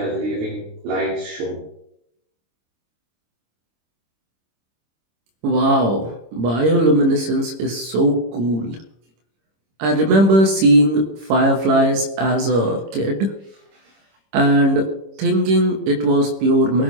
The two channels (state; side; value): late; left; 26 ms